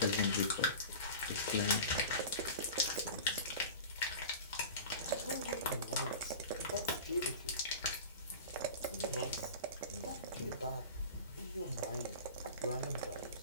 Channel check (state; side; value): inverted; both; correlation -0.34